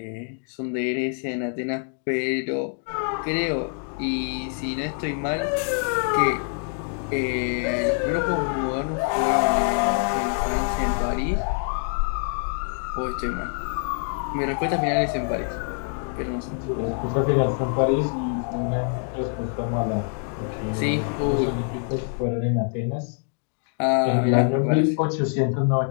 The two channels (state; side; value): silent; right; 56 dB below the other